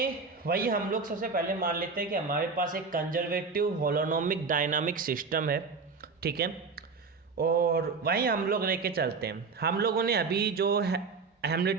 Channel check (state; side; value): quieter; left; 4.7 dB